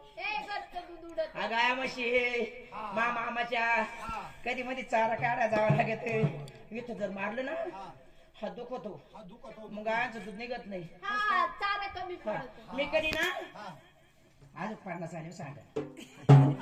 ए गच्च दूध उडत. गाया म्हशी मामाच्या कधी मध्ये चारा काढा जावं लागत. इथं जर मारलं ना हा दुखतो, हा दुखतो. मग गायांचं दूध निघत नाही. हा चारा कमी हा. पडतो. मी कधी ना हा. आज 50 आले सांगा.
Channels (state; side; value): identical; both; correlation 1.00